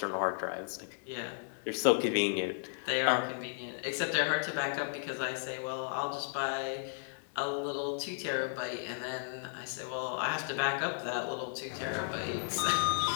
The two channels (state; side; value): silent; right; digital silence